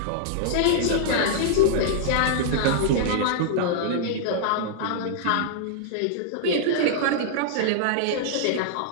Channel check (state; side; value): different; both; correlation -0.01